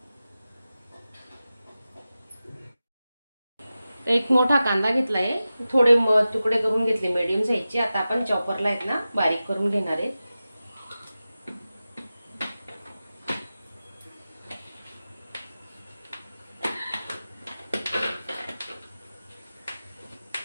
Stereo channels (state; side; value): inverted; both; correlation -0.94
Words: एक मोठा कांदा घेतलाय, थोडे तुकडे करून घेतले मीडियम साईजचे. आता आपण चॉपरला आहेत ना बारीक करून घेणार आहे.